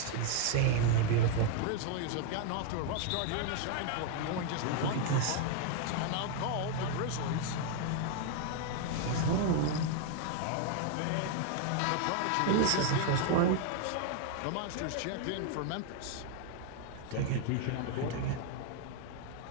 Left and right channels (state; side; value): different; both; correlation 0.00